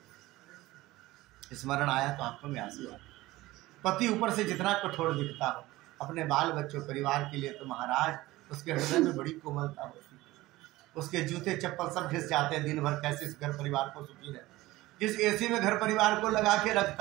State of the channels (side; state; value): left; quieter; 18.3 dB